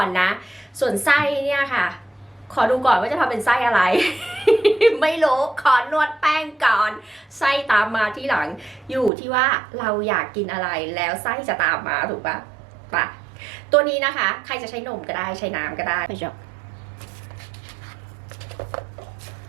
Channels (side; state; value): left; drops out; at 9.1 s